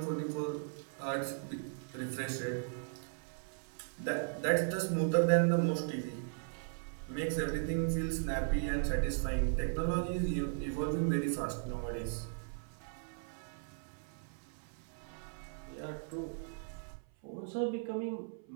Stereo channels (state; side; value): silent; left; 53 dB below the other